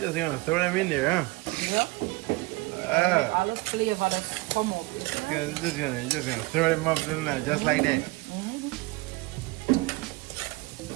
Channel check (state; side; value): quieter; left; 23.0 dB